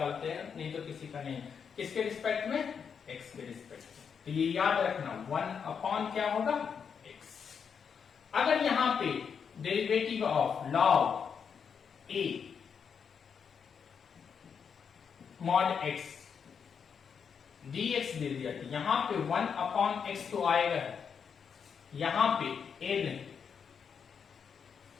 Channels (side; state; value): right; quieter; 6.7 dB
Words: हैं, नहीं तो किसी का नहीं। किसके रिस्पेक्ट में, x के रिस्पेक्ट में। तो ये याद रखना 1 अपॉन क्या होगा, x। अगर यहां पे derivative of log a mod x dx दे दिया, तो यहां पे 1 अपॉन x तो आएगा, यहां पे n